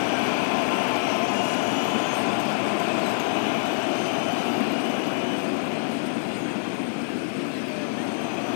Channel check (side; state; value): right; silent; digital silence